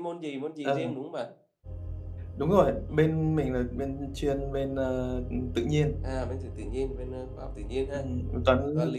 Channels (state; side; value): identical; both; correlation 1.00